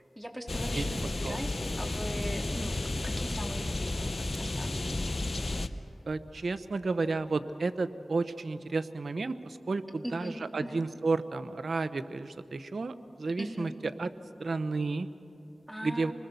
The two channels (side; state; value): both; normal; correlation 0.95